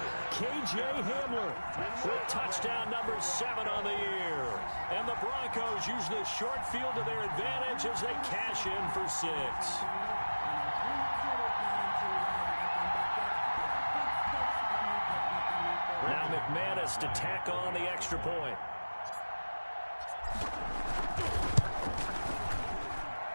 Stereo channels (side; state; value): both; inverted; correlation -1.00